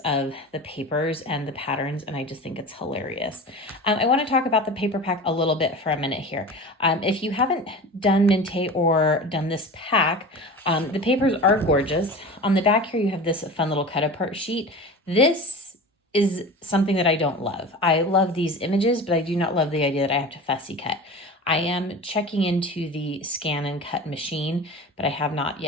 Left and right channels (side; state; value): both; normal; correlation 0.33